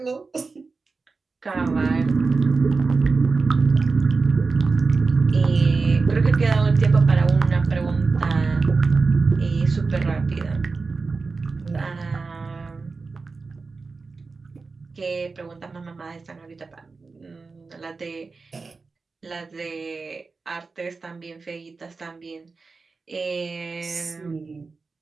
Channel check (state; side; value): quieter; left; 4.2 dB